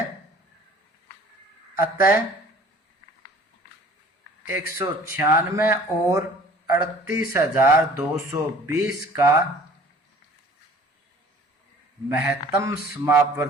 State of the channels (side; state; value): both; normal; correlation 0.50